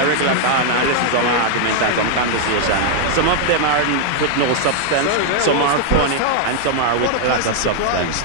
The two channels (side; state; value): both; different; correlation 0.00